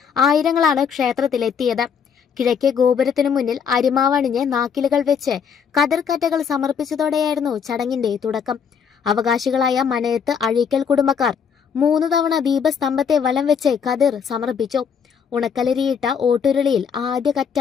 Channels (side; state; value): right; quieter; 6.9 dB